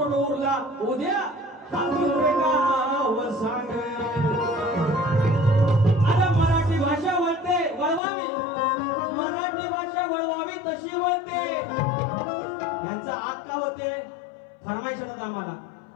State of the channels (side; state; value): right; drops out; at 8.0 s